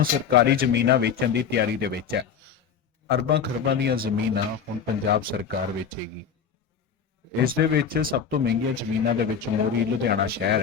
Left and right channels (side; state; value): right; quieter; 7.1 dB